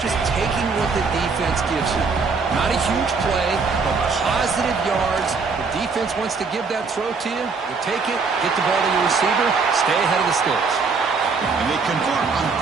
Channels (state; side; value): quieter; left; 4.7 dB